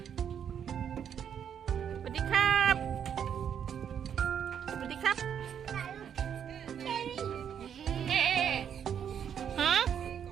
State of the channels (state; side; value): quieter; left; 8.5 dB